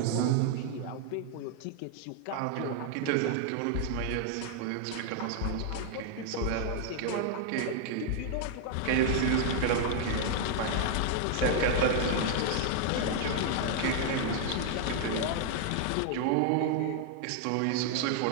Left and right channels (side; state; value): both; different; correlation 0.00